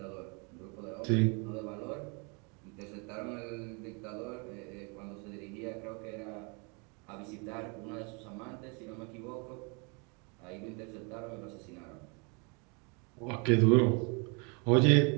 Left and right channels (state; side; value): quieter; left; 33.0 dB